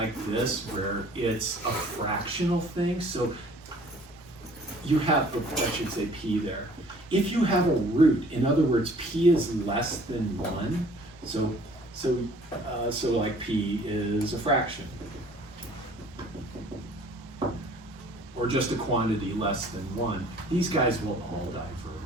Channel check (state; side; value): normal; both; correlation 0.54